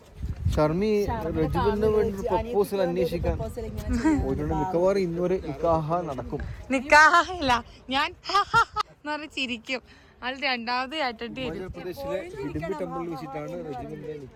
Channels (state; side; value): identical; both; correlation 1.00